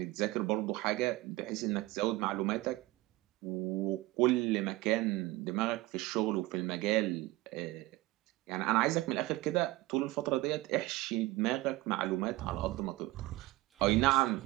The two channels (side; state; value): left; quieter; 19.4 dB